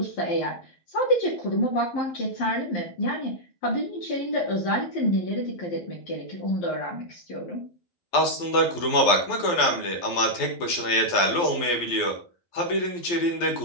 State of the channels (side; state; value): right; late; 12 ms